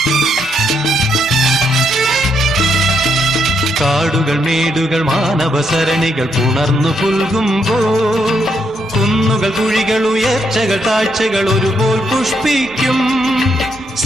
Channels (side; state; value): both; normal; correlation 0.77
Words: കാടുകൾ മേടുകൾ മാനവസരണികൾ പുണർന്നു പുൽകുമ്പോൾ കുന്നുകൾ കുഴികൾ ഉയർച്ചകൾ താഴ്ചകൾ ഒരുപോൽ പുഷ്പിക്കും